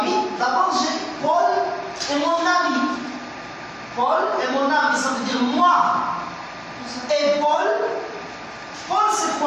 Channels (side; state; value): both; identical; correlation 1.00